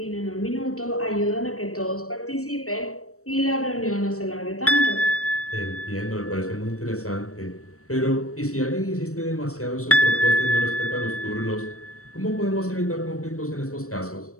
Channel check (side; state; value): right; late; 0.64 ms